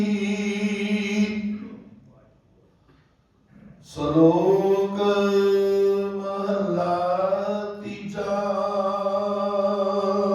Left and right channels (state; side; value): identical; both; correlation 1.00